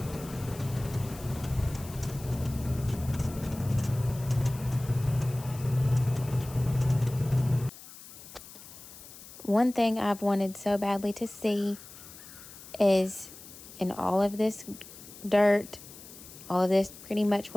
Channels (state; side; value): noise; left; hiss, 17 dB below the sound